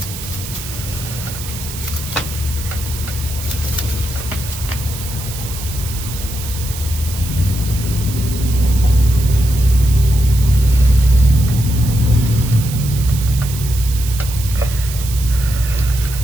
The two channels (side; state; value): right; noise; hiss, 10 dB below the sound